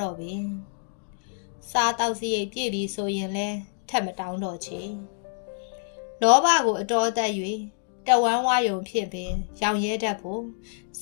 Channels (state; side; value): silent; right; digital silence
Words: တော့ပင်စားတောက်စရိတ်ပြည့်ပြီဆိုရင်လဲထက်မတောင်းတော့ချေလောဘကိုအတော်သက်၍တဝမ်းဝါယုံဖြစ်ပင်ရောင်ရဲတတ်ဖို့စ